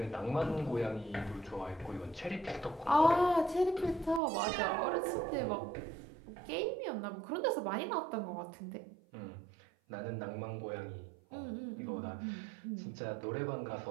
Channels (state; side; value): drops out; left; at 4.2 s